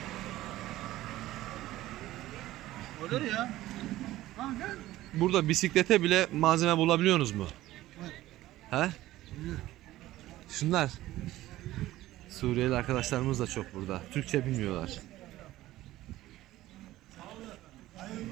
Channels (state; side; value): quieter; left; 15.7 dB